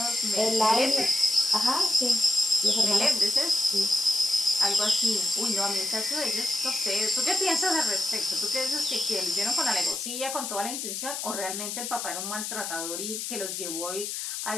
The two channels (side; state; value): left; noise; hiss, 4 dB below the sound